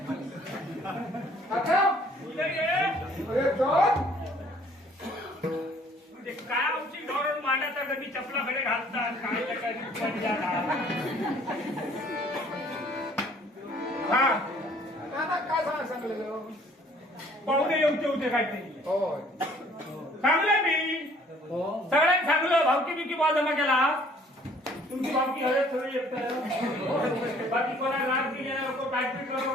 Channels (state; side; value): normal; both; correlation 0.57